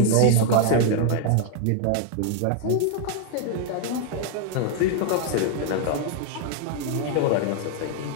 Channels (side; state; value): both; different; correlation 0.00